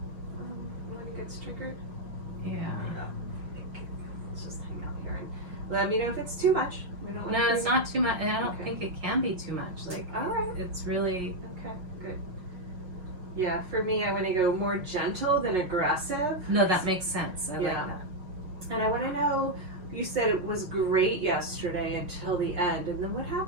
when it gets triggered. Yeah. Let's just hang out here and let me know if it's too much. We don't want No, to it's not too much. I don't Okay. think it can be too much. Like, All right. it's really, Okay, good. Yeah, for me, I want to go more gentle than aggressive. no, that makes sense. I like Yeah. that. And I want to know, you said it was great yesterday until the end. And then what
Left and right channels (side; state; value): left; late; 5.5 ms